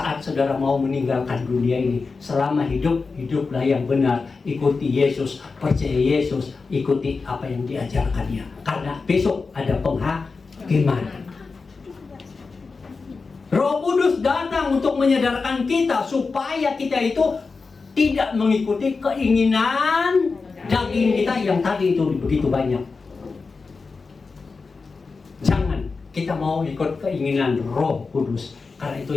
saudara mau meninggalkan dunia ini. Selama hiduplah yang benar. Ikuti Yesus, percaya Yesus, ikuti apa yang diajarkannya. Karena besok ada penghakiman. Roh Kudus datang untuk menyadarkan kita supaya kita itu tidak mengikuti keinginan daging kita yang tadi itu begitu banyak. Jangan kita mau ikut keinginan Roh Kudus, karena itu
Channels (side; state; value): right; quieter; 4.4 dB